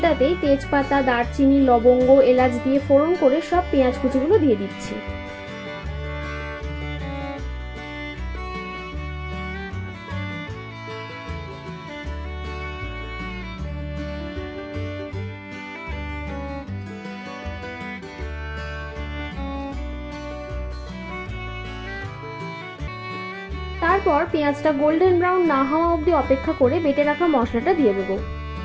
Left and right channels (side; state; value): both; identical; correlation 1.00